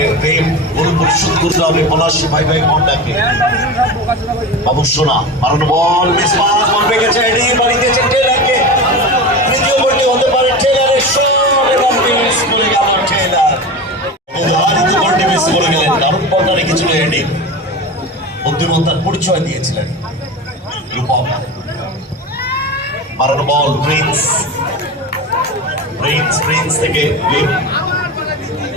ভীম গোল পরিশোধ করতে হবে পলাশ ভাই ঘন্টাকে। বাবুসোনা মারানো বল, মিস পাস, বল পেয়ে গেছে, এডি বাড়ি দিয়েছে টেলারকে। তৃতীয় গোলটি হতে পারে টেলারের শট এবং মিস করে গেল টেলার। উদাহরিত গোলটি মিস করে গেলেন, দারুণ বলটা রেখেছিল এডি, বুদ্ধিমত্তার পরিচয় দিয়েছিলেন। মারানো বল, প্রিন্স থেকে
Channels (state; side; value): normal; both; correlation 0.27